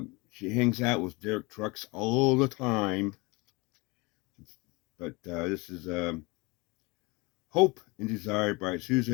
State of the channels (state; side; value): quieter; right; 26.0 dB